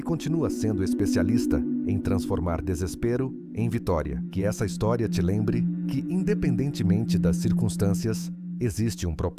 continua sendo especialista em transformar desespero em vitória. Que essa história te lembre que, independentemente das circunstâncias, existe um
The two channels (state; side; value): identical; both; correlation 1.00